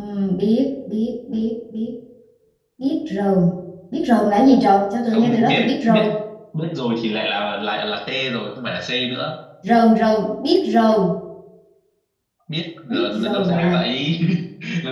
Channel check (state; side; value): identical; both; correlation 1.00